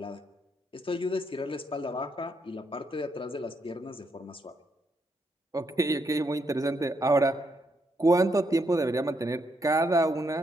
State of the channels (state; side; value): normal; both; correlation 0.78